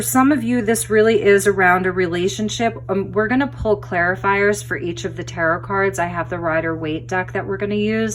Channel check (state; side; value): identical; both; correlation 1.00